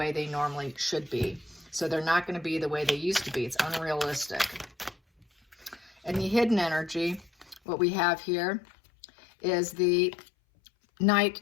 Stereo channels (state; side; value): drops out; right; at 7.6 s